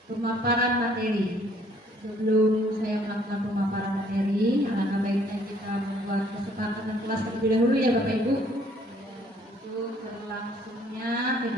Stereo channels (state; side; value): normal; both; correlation 0.62